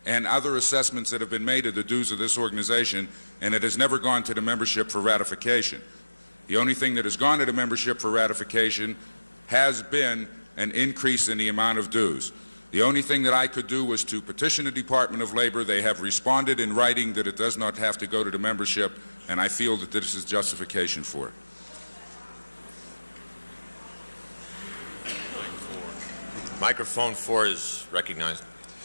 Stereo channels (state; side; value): inverted; both; correlation -1.00